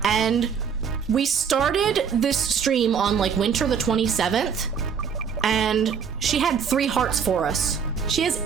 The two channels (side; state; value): left; quieter; 6.9 dB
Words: And we started this stream on like winter the 27th, and she had 3 hearts for us. She has